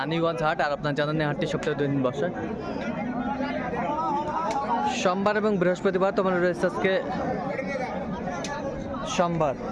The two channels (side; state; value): both; identical; correlation 1.00